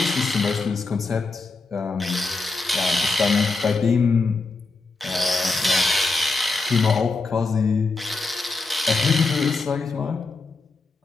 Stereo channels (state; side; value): quieter; right; 3.7 dB